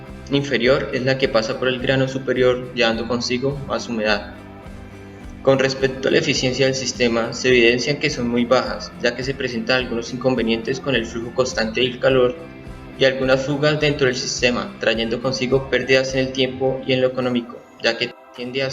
inferior es la que pasa por el grano superior, llevando consigo más humedad. Con respecto a la eficiencia del sistema, se evidencian que son muy bajas, ya que se presentan algunos inconvenientes con el flujo constante del calor y algunas fugas dentro del sistema, trayendo consigo pérdidas en el tiempo y en lo económico, ya que tiende a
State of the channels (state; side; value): identical; both; correlation 1.00